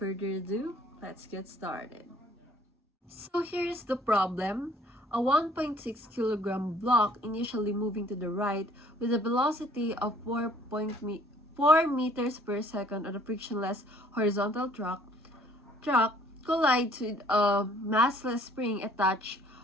ado, let's get started. So here's the problem. A 1.6 kilogram block initially moving to the right with a velocity of 4 meters per second on a frictionless horizontal track collides with a massless spring attached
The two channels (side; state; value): both; normal; correlation 0.58